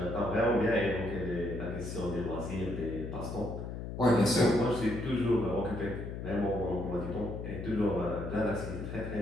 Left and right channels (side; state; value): left; noise; hum, 7 dB below the sound